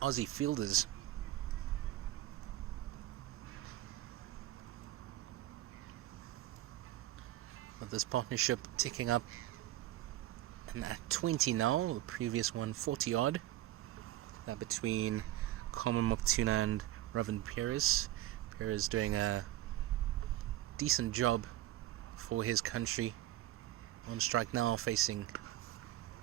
Aussie fielders. But this partnership ticking up, and at 20 now, the previous one 40 odd. Between Carmen Maputuna and Robin Perez. Perez doing a decent job for his country. On strike now, facing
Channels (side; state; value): left; quieter; 14.4 dB